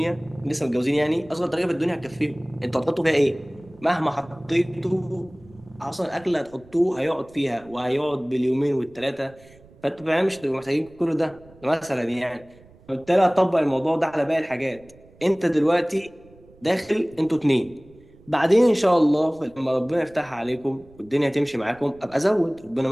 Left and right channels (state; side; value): noise; right; rumble, 26 dB below the sound